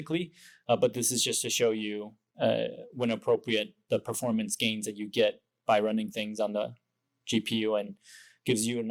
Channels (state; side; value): identical; both; correlation 1.00